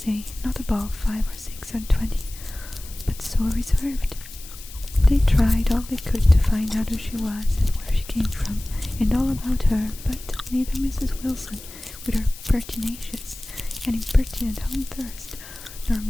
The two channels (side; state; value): left; noise; hiss, 16 dB below the sound